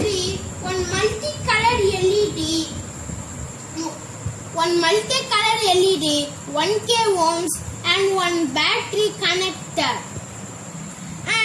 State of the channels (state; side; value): identical; both; correlation 1.00